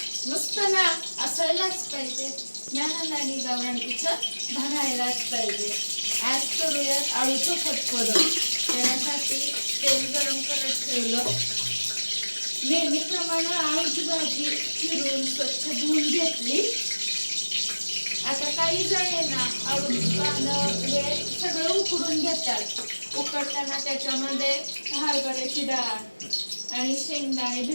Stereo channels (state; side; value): inverted; both; correlation -1.00